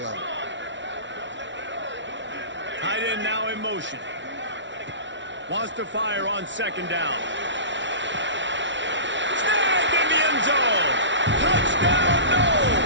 Tight end now in motion. Wants to fire on 2nd down. Snagged in the end zone. Touchdown,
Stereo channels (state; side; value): late; left; 0.54 ms